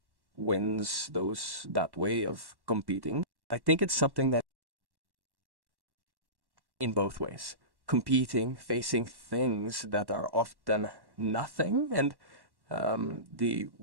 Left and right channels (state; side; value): late; left; 1.1 ms